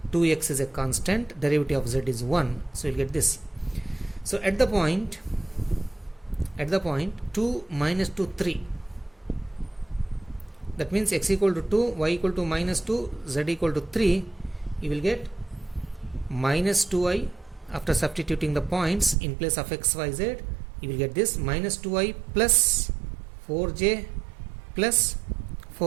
2x is a constant, derivative of z is 1, so you'll get this. So at the point 2 minus 2 3, that means x equal to 2, y equal to minus 2, z equal to 3, you will get minus 2i. After substituting the points in place of x, y, z, you will get this minus 2i plus 4j plus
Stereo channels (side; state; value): left; drops out; at 19.2 s